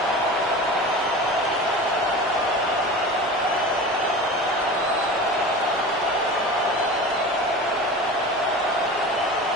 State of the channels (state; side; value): normal; both; correlation 0.33